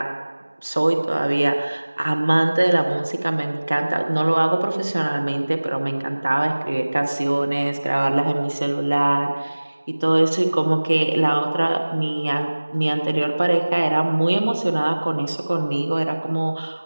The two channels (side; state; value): both; inverted; correlation -1.00